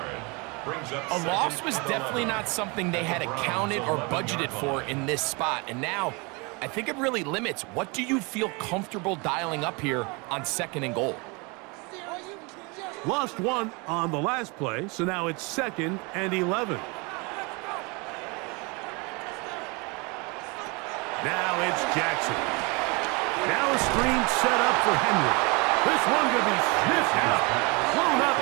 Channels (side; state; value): left; quieter; 29.0 dB